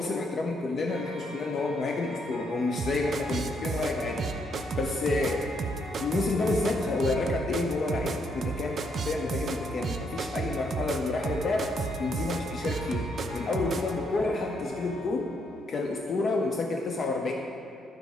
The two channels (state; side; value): normal; both; correlation 0.74